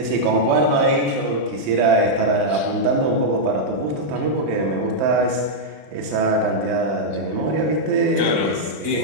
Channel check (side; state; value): left; late; 31 ms